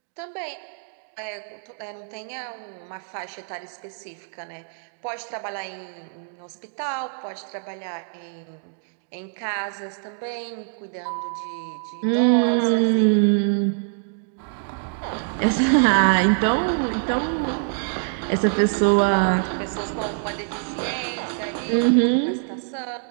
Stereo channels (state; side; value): silent; left; digital silence